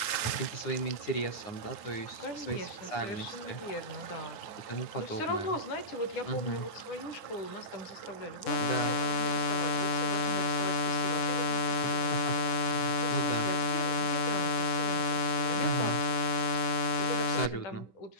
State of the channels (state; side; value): late; right; 9.7 ms